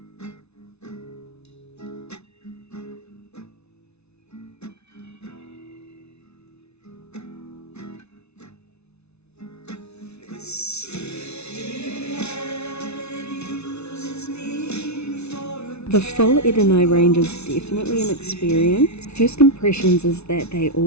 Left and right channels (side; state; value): right; late; 0.80 ms